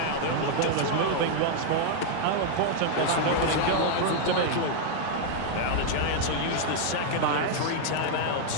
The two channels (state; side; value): different; both; correlation 0.00